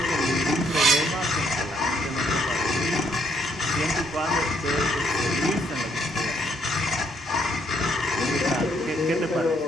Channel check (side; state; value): both; normal; correlation 0.71